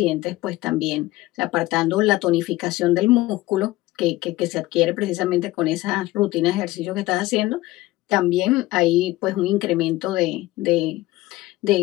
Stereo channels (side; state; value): right; quieter; 18.0 dB